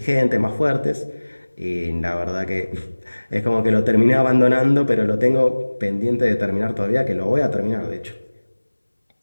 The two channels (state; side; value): inverted; both; correlation -1.00